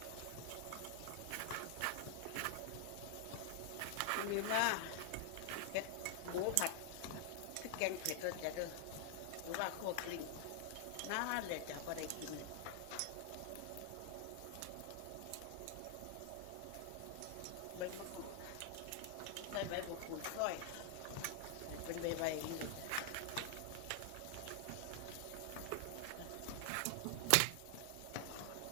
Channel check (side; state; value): both; different; correlation 0.00